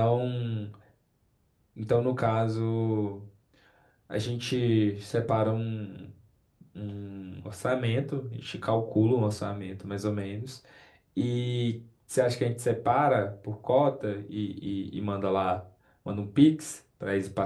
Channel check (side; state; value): both; identical; correlation 1.00